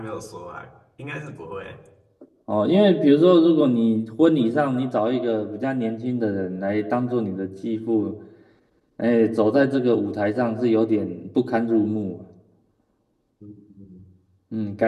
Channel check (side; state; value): both; identical; correlation 1.00